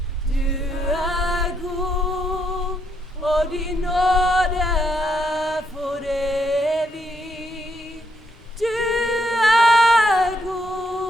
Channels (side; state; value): both; normal; correlation 0.76